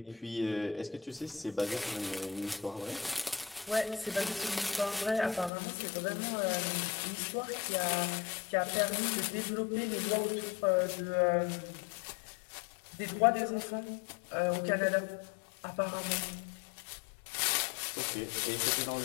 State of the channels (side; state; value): right; drops out; at 5.5 s